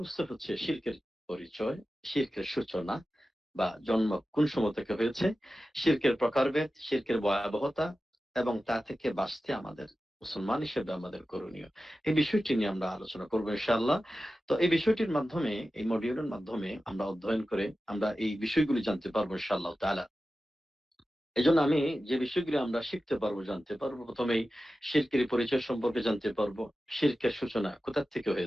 হচ্ছে শিরকের পরিচয়, শিরকের সূচনা বা জন্ম কোন সময় থেকে হয়েছে, শিরকের প্রকারভেদ, শিরকের ভয়াবহতা এবং তা থেকে বাঁচতে আমাদের মুসলমান হিসেবে আমাদের করণীয়। এই বিষয়টি নিয়ে আমরা আলোচনা করব ইনশাআল্লাহ। তো এই বিষয়টির মাধ্যমে, এই মডিউলের মাধ্যমে আমরা অধ্যয়ন করে আমরা এই বিষয়গুলি জানতে পারবো ইনশাআল্লাহ তাআলা। এজন্য আমি যে বিষয়গুলো আমরা শিখতে পারবো, জানতে পারবো, প্রথমেই শিরকের পরিচয় সম্পর্কে জানতে পারবো। শিরকের সূচনা কোথা থেকে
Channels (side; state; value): both; normal; correlation 0.94